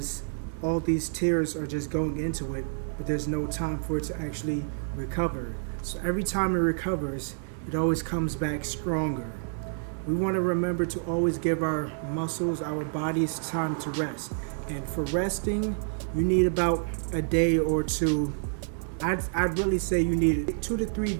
all these tears are just going into it, but there's no time for it to actually recover. So every time it recovers, it always comes back stronger. We want to remember to always give our muscles, our bodies, time to rest. And for resting, you need about a day or two. I'd really say you need 2 to 3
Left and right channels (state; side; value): silent; left; digital silence